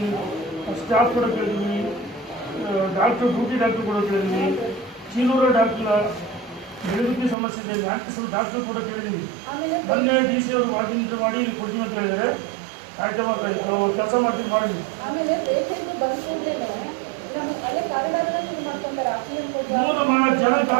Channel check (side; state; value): left; drops out; at 7.4 s